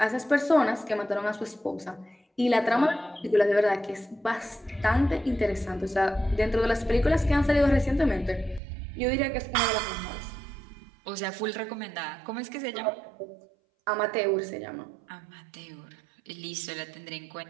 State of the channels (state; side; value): drops out; left; at 8.6 s